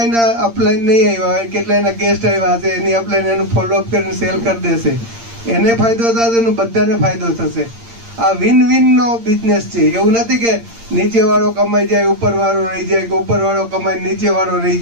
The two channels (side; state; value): left; late; 8.7 ms